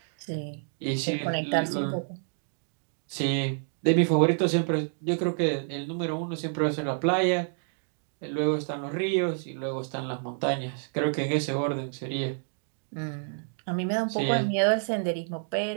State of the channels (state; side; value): silent; left; digital silence